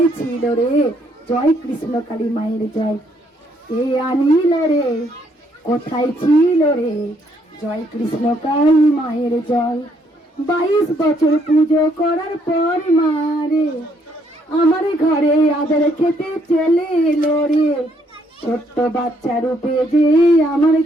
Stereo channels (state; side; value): normal; both; correlation 0.70